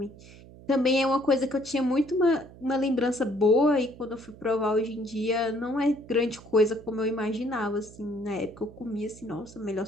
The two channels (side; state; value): right; noise; hum, 20 dB below the sound